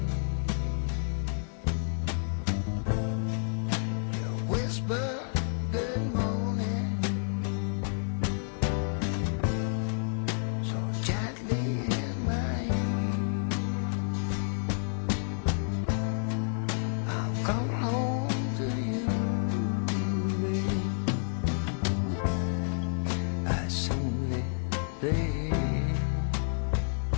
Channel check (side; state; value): right; silent; 58 dB below the other